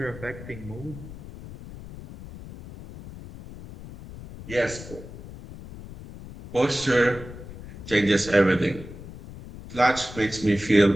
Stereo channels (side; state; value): left; noise; rumble, 14 dB below the sound